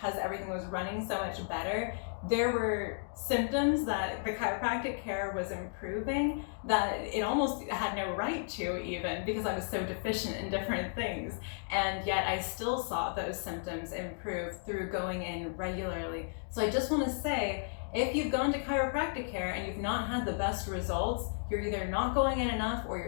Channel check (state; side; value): silent; right; digital silence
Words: everything was running so much better. There were symptoms that the chiropractic care was improving that it almost had no right to, even because I was so deficient in different things. And yet I still saw those symptoms improve through going in regularly. So I just want to say, if you've gone to chiropractic care and you've not had the best results, you're either not going in enough or you're